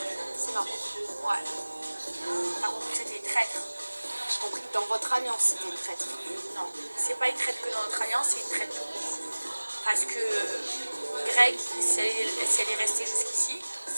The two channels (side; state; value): both; inverted; correlation -1.00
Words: c'est marrant. Ouais. T'as compris que c'était une traître. J'ai compris que dans votre alliance, c'était une traître. Non, c'est pas une traite que dans notre alliance, c'est une traite tout court. Parce que Greg, si elle est restée jusqu'ici,